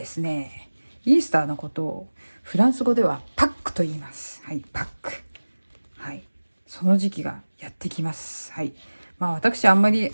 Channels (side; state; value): both; inverted; correlation -1.00